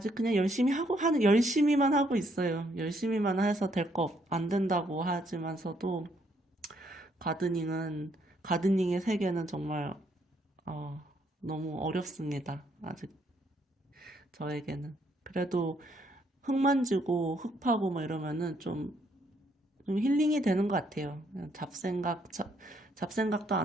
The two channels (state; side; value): normal; both; correlation 0.71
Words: 그냥 열심히만 하고 있어요. 열심히만 해서 안 된다고 하지만서도, 가드닝은, 가드닝의 세계는 정말, 어, 너무 어렵습니다. 아직 저에게는. 그래도 흙 만지고 흙 파고 뭐 이러면은 좀 힐링이 되는 것 같아요. 그냥 잡생각도